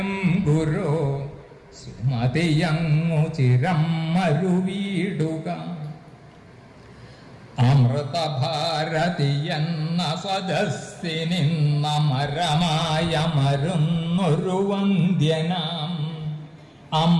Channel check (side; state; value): both; identical; correlation 1.00